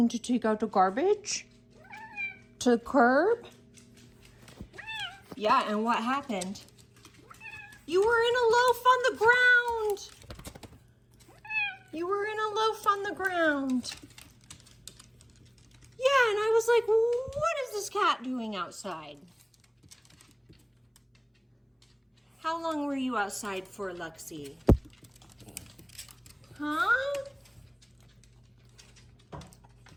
take out the garbage to the curb. Yeah, and what happened? You were in a loaf on the ground. You were in a loaf on the ground. Yeah, and I was like, what is this cat doing outside? How long were you outside for, Luxie? Huh?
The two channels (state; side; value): identical; both; correlation 1.00